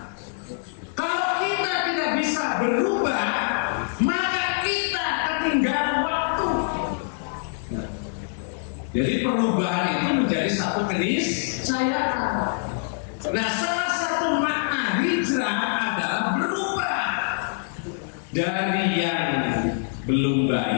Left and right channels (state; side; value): silent; right; 62 dB below the other